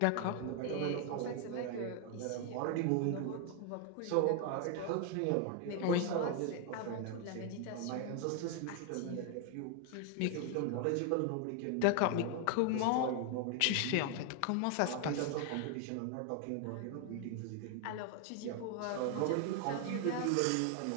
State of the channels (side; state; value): both; different; correlation 0.00